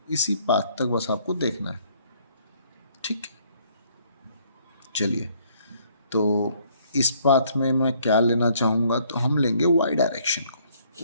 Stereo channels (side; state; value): both; inverted; correlation -0.64